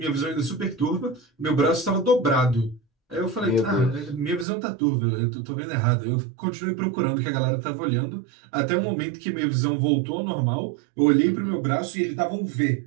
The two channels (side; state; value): left; drops out; at 4.5 s